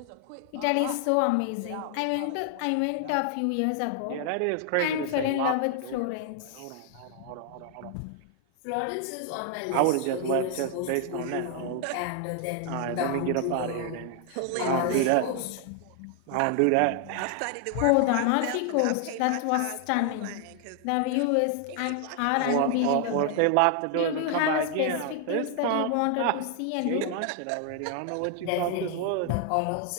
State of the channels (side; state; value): both; different; correlation 0.00